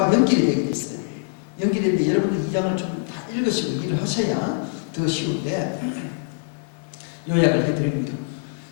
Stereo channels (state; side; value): silent; right; digital silence